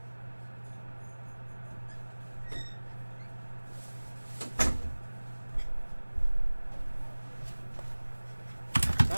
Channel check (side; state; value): both; inverted; correlation -1.00